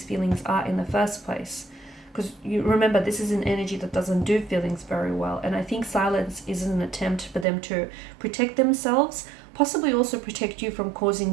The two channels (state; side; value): drops out; left; at 7.5 s